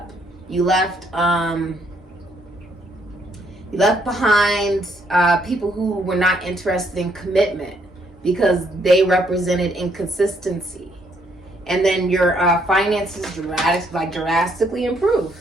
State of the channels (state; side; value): normal; both; correlation 0.71